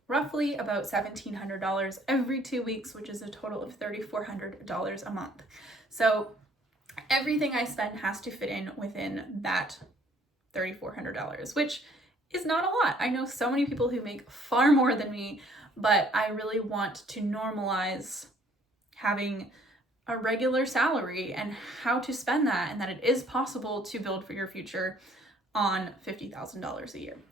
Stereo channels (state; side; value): normal; both; correlation 0.60